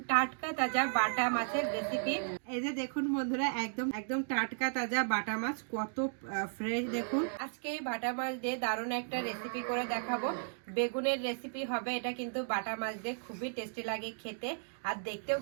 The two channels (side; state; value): left; silent; digital silence